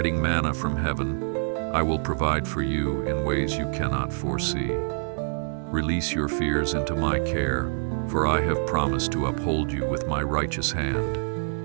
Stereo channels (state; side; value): silent; left; 57 dB below the other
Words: manna from heaven, I will provide for you in ways you cannot foresee. Release your fears into my care, for I have promised to uphold you with my righteous hand.